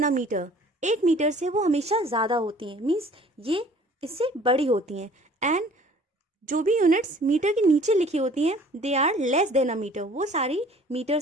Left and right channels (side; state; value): both; normal; correlation 0.52